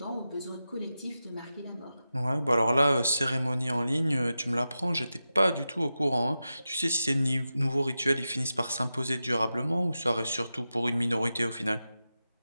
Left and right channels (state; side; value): inverted; both; correlation -0.92